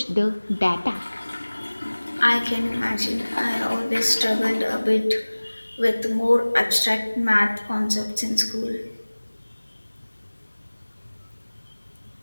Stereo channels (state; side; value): inverted; both; correlation -1.00